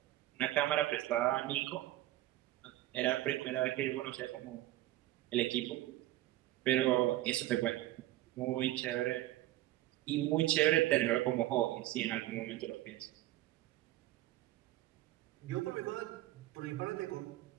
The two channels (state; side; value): quieter; left; 15.8 dB